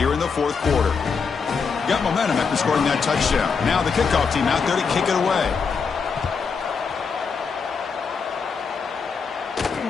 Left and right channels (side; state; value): right; quieter; 5.5 dB